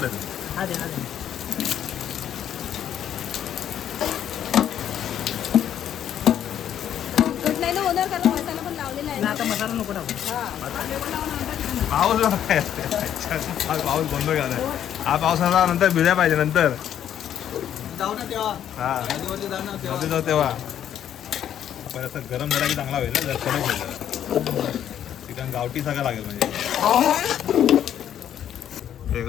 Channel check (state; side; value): quieter; right; 10.1 dB